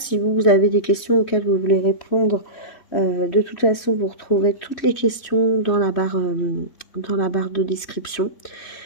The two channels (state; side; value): late; right; 3.1 ms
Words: vous avez des questions auxquelles vous voulez répondre De toute façon, vous retrouverez toutes les questions dans la barre de description.